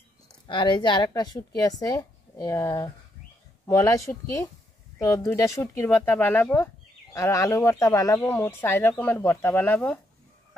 আর এই যে আরেকটা শুটকি আছে মলাই শুটকি। তো 2টা শুটকির ভর্তা বানাবো আর আলু ভর্তা বানাবো, মোট 4 রকমের ভর্তা বানাবো।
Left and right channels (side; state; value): both; normal; correlation 0.76